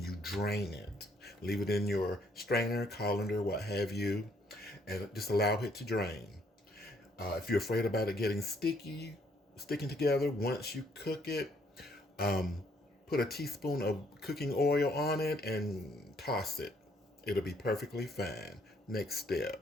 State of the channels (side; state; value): both; normal; correlation 0.67